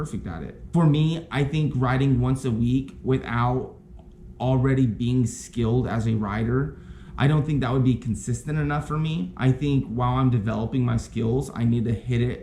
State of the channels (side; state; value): both; identical; correlation 1.00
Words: at it. For me, I think writing once a week without already being skilled as a writer, I don't think that would be consistent enough for me. I think while I'm developing my skills, I need to hit